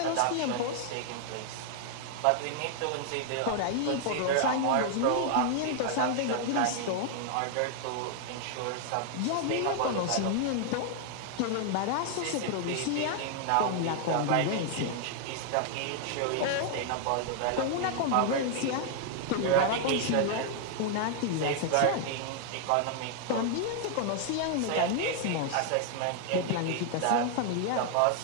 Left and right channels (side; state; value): both; different; correlation 0.00